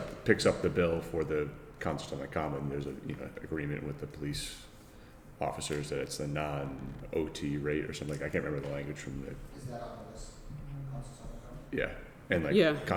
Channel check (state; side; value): identical; both; correlation 1.00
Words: picks up the bill for the concerts on the common. There's a agreement with the police officers that it's the non-OT rate or something. I can't remember the language from the Is that on the list? Concerts on the common? yeah, and like Yeah, I